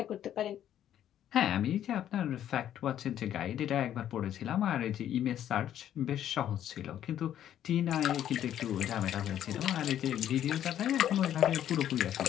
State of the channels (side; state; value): right; quieter; 10.9 dB